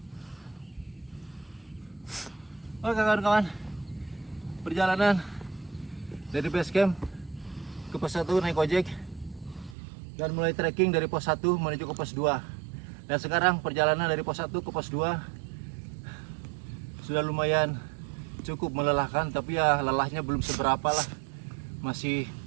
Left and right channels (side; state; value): left; drops out; at 9.8 s